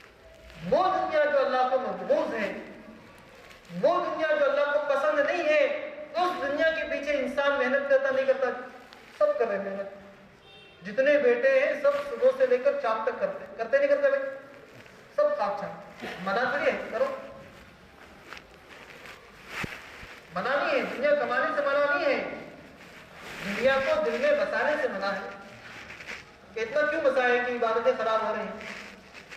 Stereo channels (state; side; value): identical; both; correlation 1.00